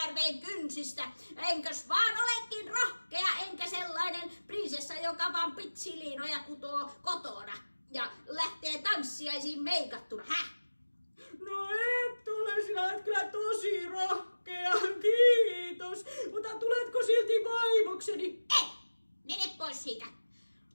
kynsistä. Enkös vaan olekin rohkea, enkä sellainen prinsessa, joka vaan pitsiliinoja kutoo kotona ja lähtee tanssiaisiin meikattuna. No et ole, sinä et kyllä tosi rohkea, kiitos. Mutta tuletko silti vaimokseni? Ei, mene pois siitä.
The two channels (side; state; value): both; inverted; correlation -1.00